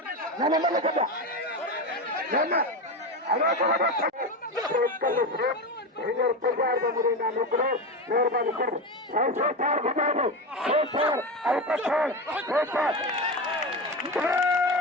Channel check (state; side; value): normal; both; correlation 0.19